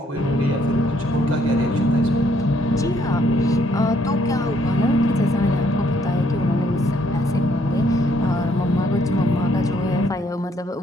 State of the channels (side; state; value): both; normal; correlation 0.68